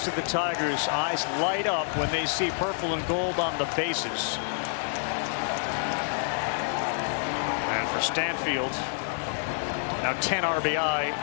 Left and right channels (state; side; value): silent; right; digital silence